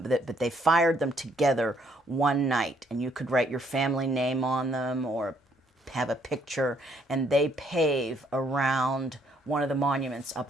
but they fired them together one night, and you could write your family name on them or have a picture, and they pave around one of the monuments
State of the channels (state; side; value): normal; both; correlation 0.69